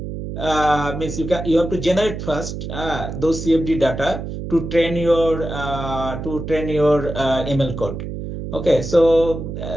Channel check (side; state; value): right; noise; hum, 7 dB below the sound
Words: means you have to generate first those CFD data to train your ML code. Okay, so